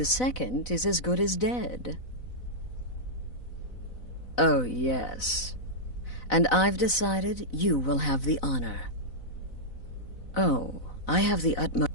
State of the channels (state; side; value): late; right; 4.0 ms